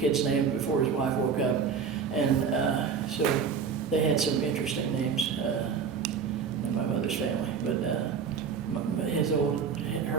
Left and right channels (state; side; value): quieter; left; 6.3 dB